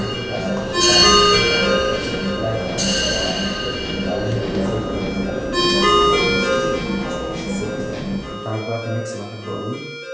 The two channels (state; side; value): identical; both; correlation 1.00